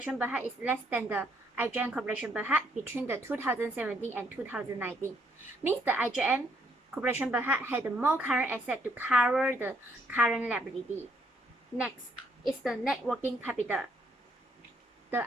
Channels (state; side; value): normal; both; correlation 0.70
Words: Berhad is less than the IGN Corporation Berhad between the 2017 and 2019. Means the IGN Corporation Berhad had more current asset to cover the current liability. Next is the net working capital. The